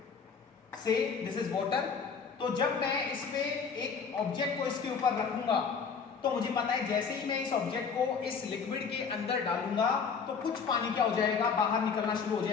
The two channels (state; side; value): quieter; right; 5.8 dB